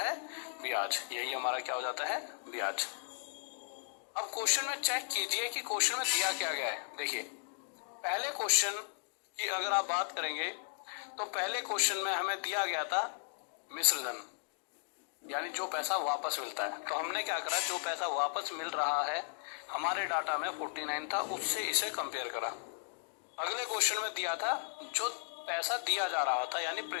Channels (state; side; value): silent; right; digital silence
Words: ब्याज। यही हमारा क्या हो जाता है, ब्याज। अब क्वेश्चन में चेक कीजिए कि क्वेश्चन में दिया क्या गया है। देखिए पहले क्वेश्चन की अगर आप बात करेंगे तो पहले क्वेश्चन में हमें दिया गया था मिश्र धन, यानी जो पैसा वापस मिलता है। तो हमने क्या करा, जो पैसा वापस मिल रहा है हमारे डाटा में 49 था, उससे इसे कंपेयर करा। अगले क्वेश्चन में दिया था जो पैसा दिया जा रहा था यानी